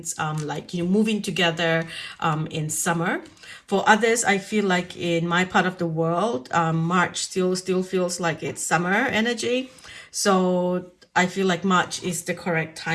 like, moving together in summer. For others, I feel like in my part of the world, March still feels like it's summer energy. So I feel like March is the correct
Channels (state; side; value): identical; both; correlation 1.00